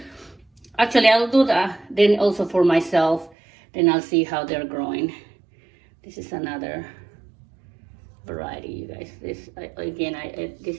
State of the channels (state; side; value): drops out; left; at 3.4 s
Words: Actually, I'll do that. Then also for myself, then I'll see how they're growing. This is another variety, you guys. This